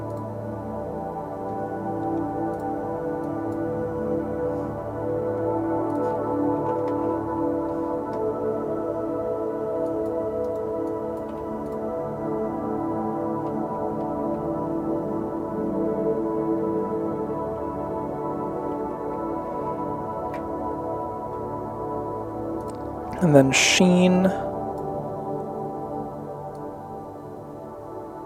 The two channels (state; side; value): identical; both; correlation 1.00